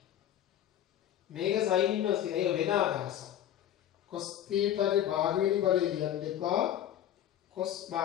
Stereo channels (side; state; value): right; quieter; 11.2 dB